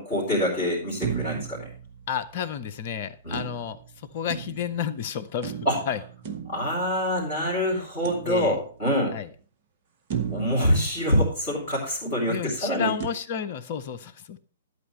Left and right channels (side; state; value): both; inverted; correlation -0.31